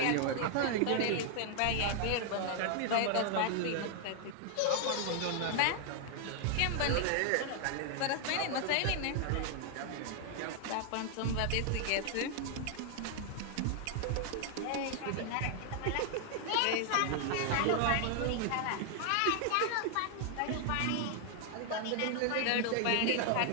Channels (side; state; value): both; different; correlation 0.00